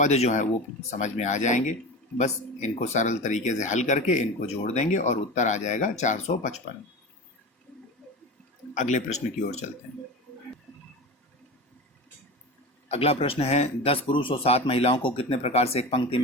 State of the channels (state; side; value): normal; both; correlation 0.28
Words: जो है वो समझ में आ जाएंगे। बस इनको सरल तरीके से हल करके इनको जोड़ देंगे और उत्तर आ जाएगा 455। अगले प्रश्न की ओर चलते हैं। अगला प्रश्न है, 10 पुरुष और 7 महिलाओं को कितने प्रकार से एक पंक्ति